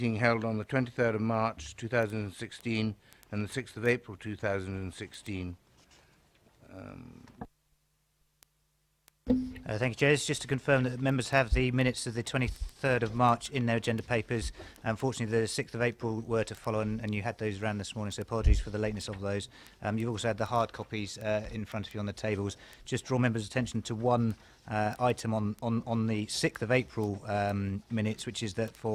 held on the 23rd of March 2016 and the 6th of April 2016. Thank you, Chair. It's just to confirm that members have the minutes of the 23rd of March in their agenda papers. Unfortunately, the 6th of April were to follow, and you had those around this morning, so apologies for the lateness of those. You've also had the hard copies in front of you on the tables. Just draw members' attention to one item on the 6th of April minutes, which is that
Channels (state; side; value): identical; both; correlation 1.00